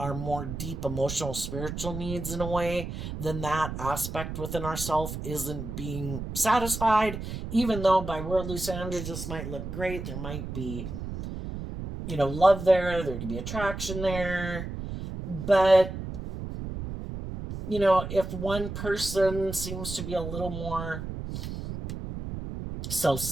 more deep emotional, spiritual needs in a way, then that aspect within ourselves isn't being satisfied. Even though by worldly standards this might look great, there might be, love there could be attraction there. But, if one person seems to be a little more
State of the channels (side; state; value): right; noise; rumble, 7 dB below the sound